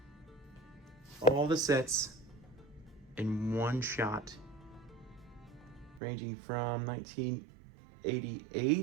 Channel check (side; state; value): left; drops out; at 6.0 s